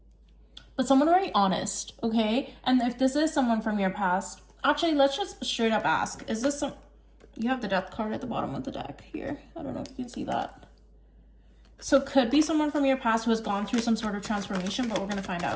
But someone very honest, okay? And if this is someone from your past, actually, let's just straight up ask, is this some... You have the Death card at the bottom of the deck here. I don't know if you can see that. So could be someone from your past who has gone through some sort of transformation, but we're going to find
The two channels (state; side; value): identical; both; correlation 1.00